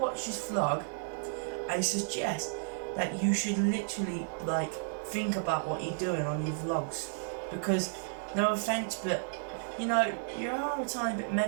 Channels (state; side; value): silent; left; digital silence